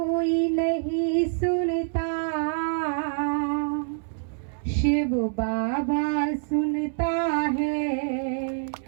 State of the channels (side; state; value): left; silent; 59 dB below the other